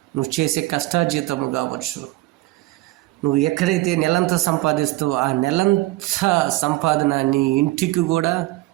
నువ్వు చేసే కష్టాజీతము కావచ్చు, నువ్వు ఎక్కడైతే నెలంతా సంపాదిస్తావో ఆ నెలంతా సంపాదన నీ ఇంటికి కూడా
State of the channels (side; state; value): left; quieter; 19.0 dB